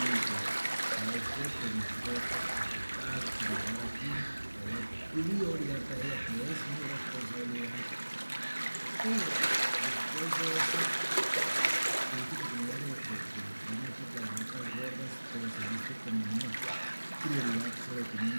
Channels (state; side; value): inverted; both; correlation -1.00